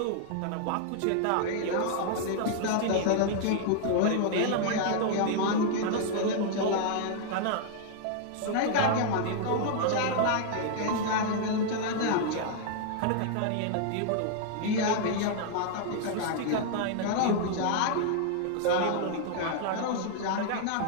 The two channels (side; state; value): both; different; correlation 0.00